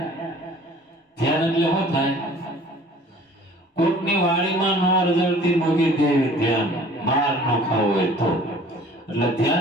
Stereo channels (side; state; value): both; normal; correlation 0.50